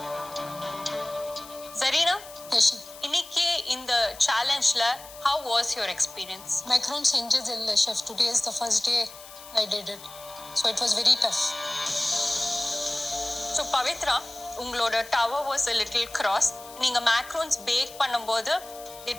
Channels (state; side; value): noise; left; hiss, 17 dB below the sound